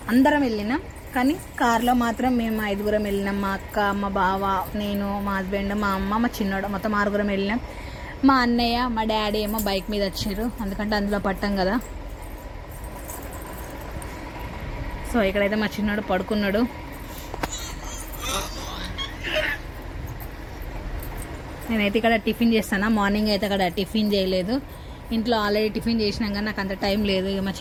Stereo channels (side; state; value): both; identical; correlation 1.00